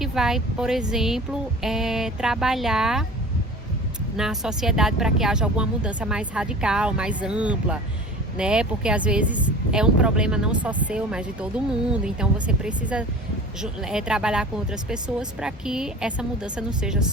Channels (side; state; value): both; normal; correlation 0.40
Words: vai, por exemplo, trabalhar na sociedade para que haja alguma mudança mais radical, mais ampla, né? Porque às vezes é um problema não só seu, mas de todo mundo. Então você precisa trabalhar com outras pessoas para que essa mudança não seja